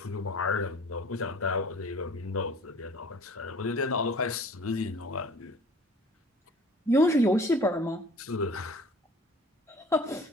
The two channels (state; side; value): normal; both; correlation 0.48